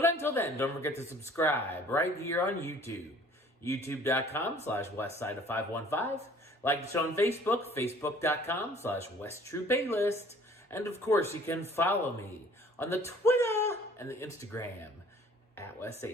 until then, don't forget to subscribe right here on YouTube. youtube.com/westside of 515. Like the show on Facebook, facebook.com/westtrueplaylist. And of course, you can follow me on the Twitter and the Instagram at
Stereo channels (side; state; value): both; normal; correlation 0.53